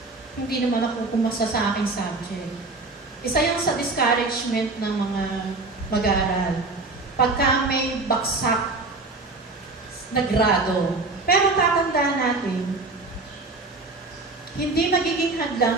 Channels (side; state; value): left; quieter; 3.5 dB